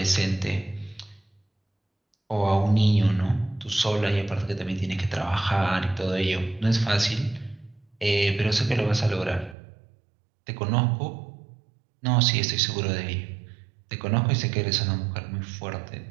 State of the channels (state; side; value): drops out; left; at 9.6 s